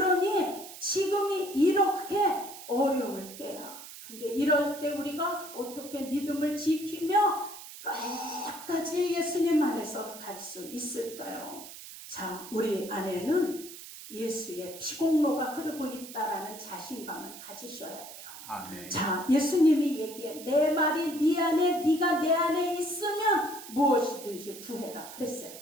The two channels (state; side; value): noise; right; hiss, 14 dB below the sound